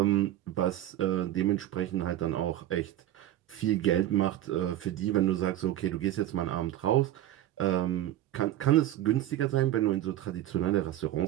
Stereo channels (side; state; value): left; quieter; 13.3 dB